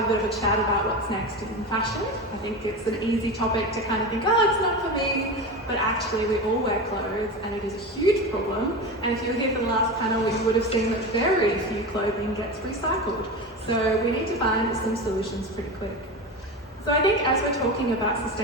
a bit of a chat about what's next in fashion. I think it's an easy topic to kind of think, oh, it's not for me, but actually we all wear clothes and it is a huge problem. And if you were here for the last panel, you would have seen that very few clothing gets recycled. So we need to find some solutions pretty quick. So I think as we're talking about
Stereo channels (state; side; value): normal; both; correlation 0.24